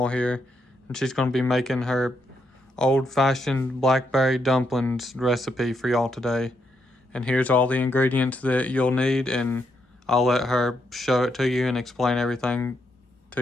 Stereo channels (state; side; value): normal; both; correlation 0.79